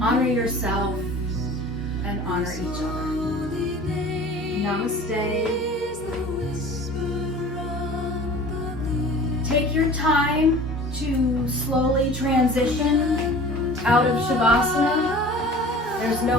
honor yourself, and honor each other. Namaste. Take your time to slowly transition out of Shavasana. There's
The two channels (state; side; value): normal; both; correlation 0.43